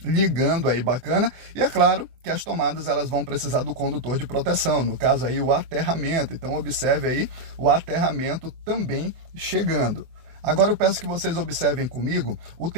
ligando aí, bacana, e é claro que as tomadas elas vão precisar do condutor de proteção, no caso aí o aterramento, então observe aí o aterramento também chegando. Agora eu peço que vocês observem comigo o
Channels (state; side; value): late; left; 24 ms